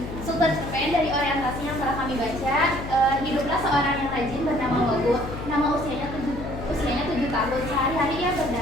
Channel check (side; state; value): left; noise; hum, 9 dB below the sound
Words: Struktur cerpen dari orientasi yang telah kami baca. Hiduplah seorang yang rajin bernama Wagu. Nama usianya 7 tahun. Sehari-hari ia